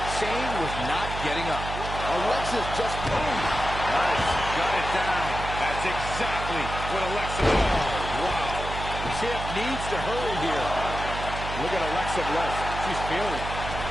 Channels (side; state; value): right; noise; hum, 7 dB below the sound